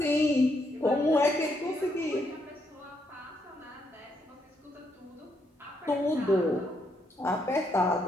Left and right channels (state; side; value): normal; both; correlation 0.76